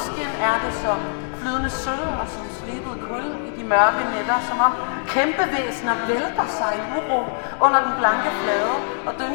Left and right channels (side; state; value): right; silent; 64 dB below the other